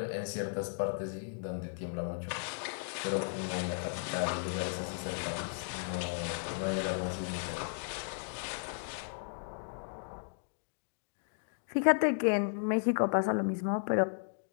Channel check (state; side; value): silent; right; digital silence